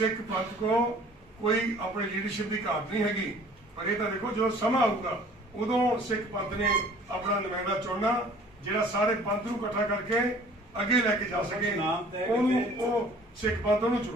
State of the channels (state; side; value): normal; both; correlation 0.51